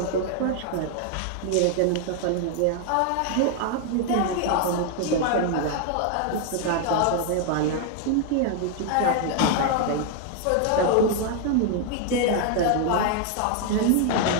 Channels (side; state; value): both; different; correlation 0.00